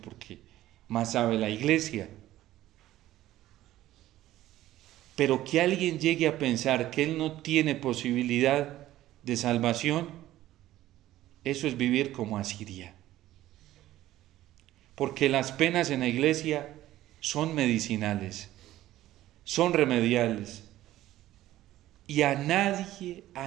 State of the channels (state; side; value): quieter; left; 14.6 dB